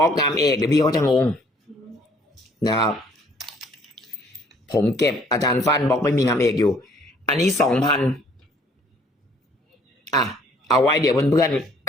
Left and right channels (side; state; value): both; normal; correlation 0.60